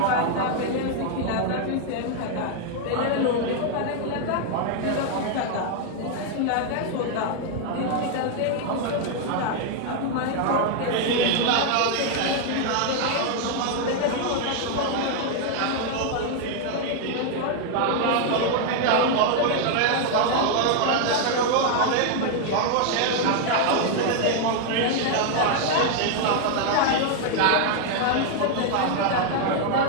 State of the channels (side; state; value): both; different; correlation 0.00